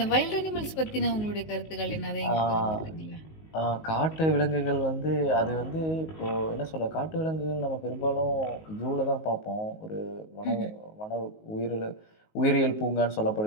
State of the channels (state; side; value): late; right; 19 ms